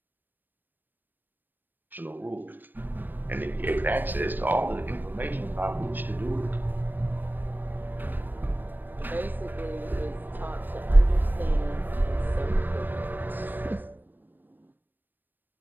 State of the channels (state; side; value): late; left; 0.092 ms